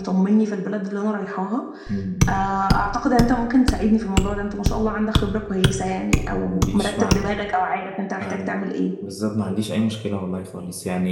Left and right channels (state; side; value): identical; both; correlation 1.00